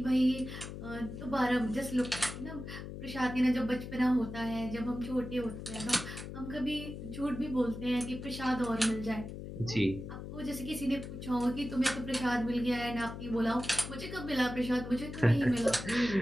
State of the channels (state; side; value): noise; left; hum, 9 dB below the sound